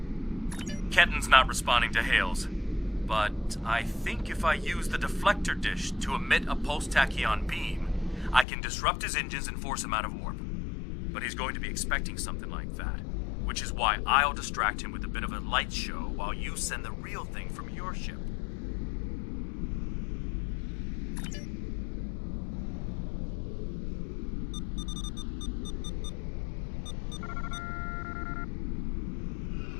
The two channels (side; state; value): right; drops out; at 8.5 s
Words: Ketten's not responding to hails, but I think if I use the deflector dish to emit a pulse tachyon beam, I can disrupt his engines and force him out of warp. But he's going to be expecting something like that, which is why I'll distract him with a bit of a light show while you send the real thing from your ship.